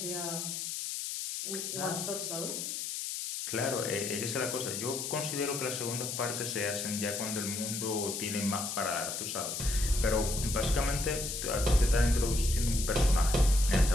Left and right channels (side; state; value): left; noise; hiss, 4 dB below the sound